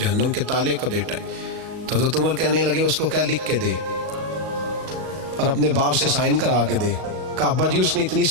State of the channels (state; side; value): late; left; 37 ms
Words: کے تالے کا بیٹا ہے۔ تو حضرت عمر کہنے لگے اس کو کیا لکھ کے دے اور اپنے باپ سے سائن کرا کے دے۔ کہا ابا جی اس نے اتنی